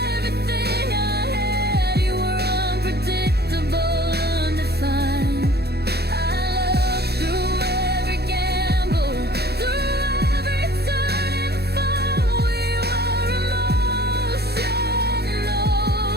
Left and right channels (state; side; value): late; left; 0.47 ms